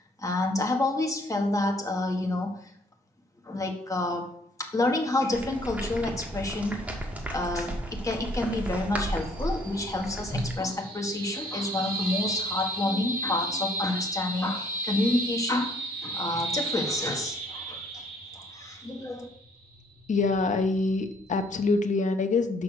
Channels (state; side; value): normal; both; correlation 0.62